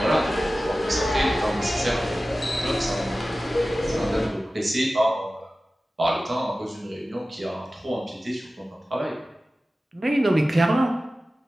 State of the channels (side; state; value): both; normal; correlation 0.96